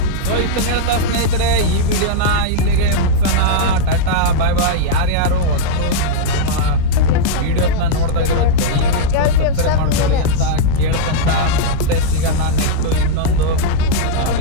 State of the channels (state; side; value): different; both; correlation -0.03